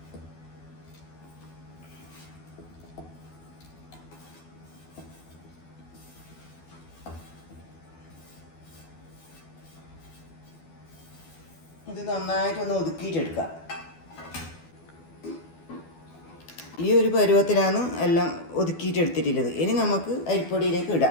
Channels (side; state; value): right; late; 12 ms